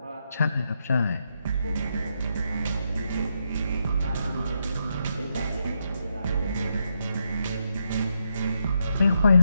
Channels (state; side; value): inverted; both; correlation -0.81